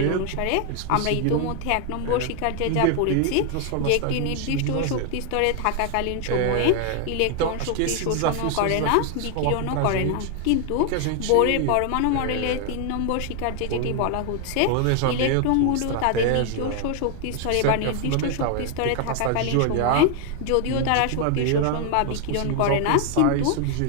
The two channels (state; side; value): different; both; correlation 0.00